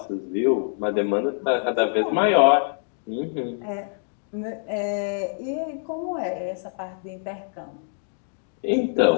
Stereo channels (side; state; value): right; silent; digital silence